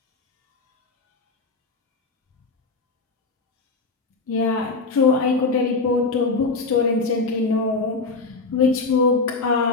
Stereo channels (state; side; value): quieter; right; 3.9 dB